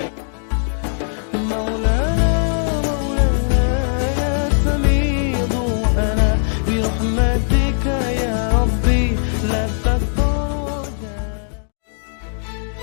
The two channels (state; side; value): silent; right; digital silence